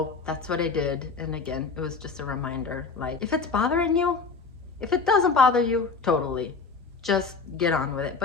that's what I did. And again, it was just a reminder, like, if it's bothering you, if it doesn't bother you, totally, just get on with it.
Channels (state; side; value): quieter; right; 4.7 dB